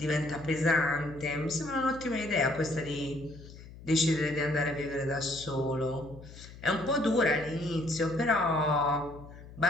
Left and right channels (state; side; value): noise; left; hum, 17 dB below the sound